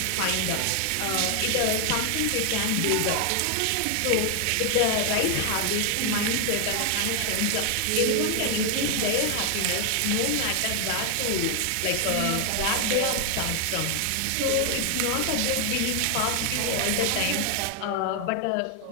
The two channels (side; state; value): both; different; correlation 0.00